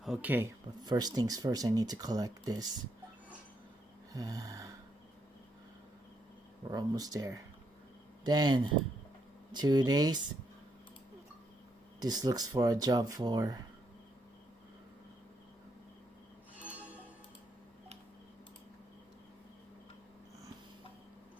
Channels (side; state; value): both; normal; correlation 0.77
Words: Okay, but first things first, I need to collect this. We're almost there. Then, 2 days. This looks for a job for